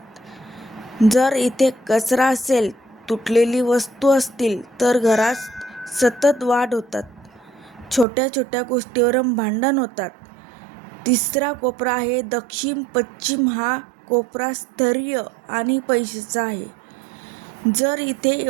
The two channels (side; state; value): left; drops out; at 8.1 s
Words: जर इथे कचरा असेल, तुटलेली वस्तू असतील तर घरात सतत वाद होतात, छोट्या छोट्या गोष्टीवरून भांडण होतात. तिसरा कोपरा आहे दक्षिण पश्चिम. हा कोपरा स्थैर्य आणि पैशाचा आहे. जर इथे